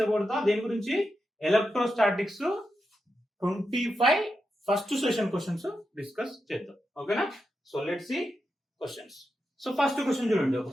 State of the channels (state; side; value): normal; both; correlation 0.87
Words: about దేని గురించి electrostatics 25 first session questions discuss చేద్దాం. ఓకేనా? So let's see questions. So first question చూడండి